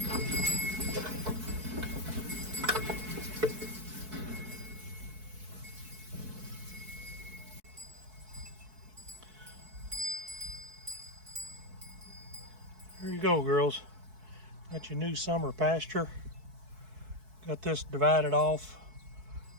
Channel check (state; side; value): late; left; 4.6 ms